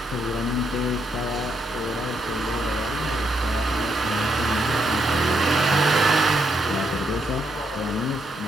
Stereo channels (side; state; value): both; normal; correlation 0.77